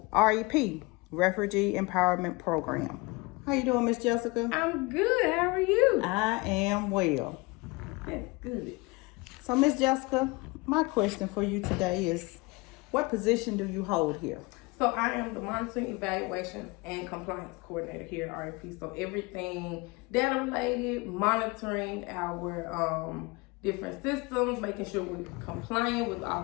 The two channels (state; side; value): quieter; right; 25.5 dB